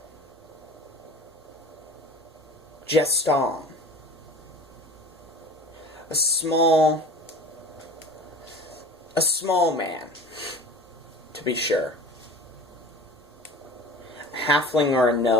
Geston, a small man, to be sure. A halfling or a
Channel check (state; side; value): normal; both; correlation 0.40